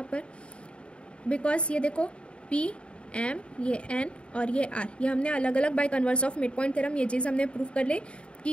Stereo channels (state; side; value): late; right; 0.057 ms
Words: पर, बिकॉज ये देखो पी एम ये एन और ये आर, ये हमने अलग अलग bye converse of mid point theorem ये चीज़ हमने प्रूव कर ली कि